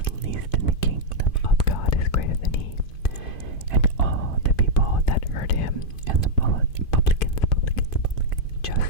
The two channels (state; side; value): late; right; 2.5 ms